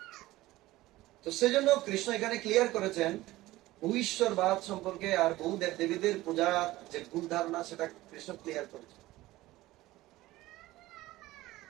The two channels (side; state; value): left; quieter; 17.5 dB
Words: তো সেজন্য কৃষ্ণ এখানে ক্লিয়ার করেছেন ভূশ্বরবাদ সম্পর্কে আর বহু দেব দেবীদের পূজা যে ভুল ধারণা সেটা কৃষ্ণ ক্লিয়ার করেছেন।